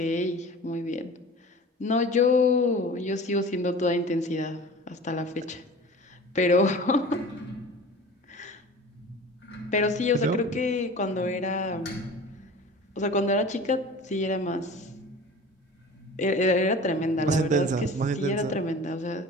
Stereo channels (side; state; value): both; normal; correlation 0.39